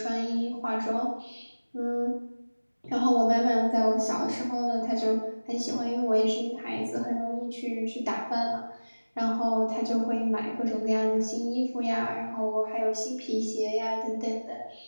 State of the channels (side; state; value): both; inverted; correlation -1.00